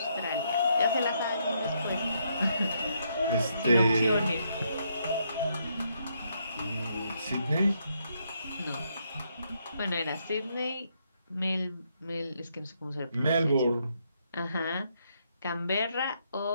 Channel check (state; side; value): inverted; both; correlation -0.75